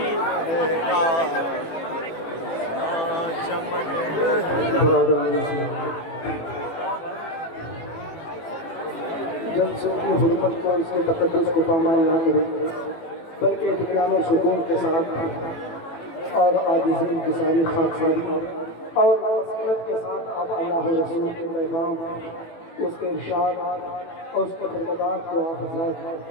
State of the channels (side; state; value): right; late; 18 ms